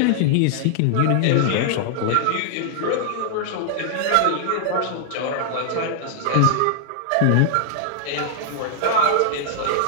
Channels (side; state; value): both; different; correlation -0.01